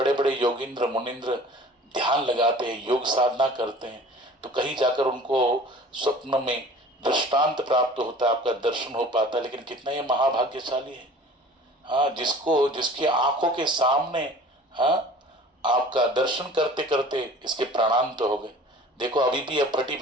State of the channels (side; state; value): both; normal; correlation 0.45